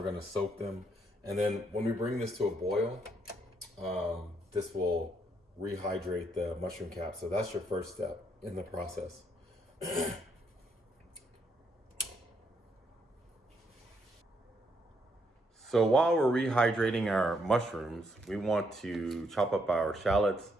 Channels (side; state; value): both; normal; correlation 0.74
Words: gonna soak them, and then when we bring this to a boil, this will rehydrate the mushroom cap. So that's your first step in the process. So while we're rehydrating our mushrooms, we want to chop up our shallots,